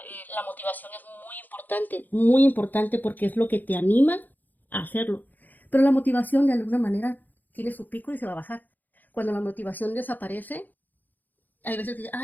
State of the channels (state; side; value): late; right; 0.085 ms